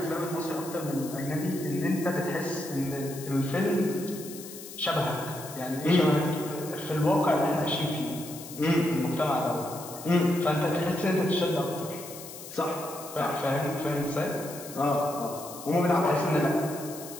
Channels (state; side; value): noise; left; hiss, 13 dB below the sound